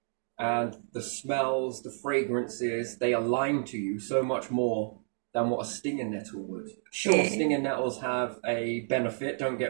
And the smells, the fragrances, they align to you so much more than what a stinging nettle would. Sure, stinging nettles have a benefit, don't get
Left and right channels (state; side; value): silent; left; 58 dB below the other